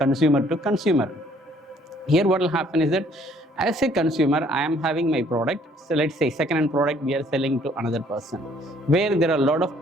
to consumer. Here what will happen is that as a consumer, I am having my product. So let's say second-hand product we are selling to another person, where there are a lot of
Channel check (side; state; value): both; normal; correlation 0.61